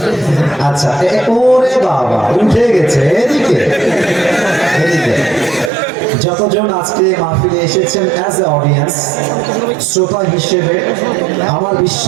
আচ্ছা, ওরে বাবা উঠে গেছে এদিকে এদিকে। যতজন আজকে মাহফিলে এসেছেন অ্যাজ এ অডিয়েন্স, শ্রোতা হিসেবে আমার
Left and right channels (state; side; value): drops out; left; at 5.7 s